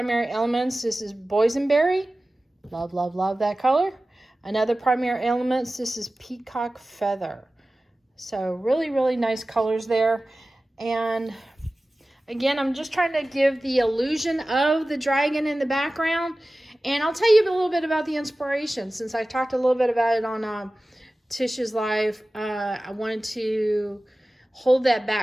elements. This is boysenberry. Love, love, love that color. Another primary elements. This is peacock feather. So really, really nice colors there. And again, I'm just trying to give the illusion of the dragon in the background. And I'll tell you a little bit about the inspiration, since I talked a little bit about it on Tish's live. I wanted to hold that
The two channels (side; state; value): both; normal; correlation 0.96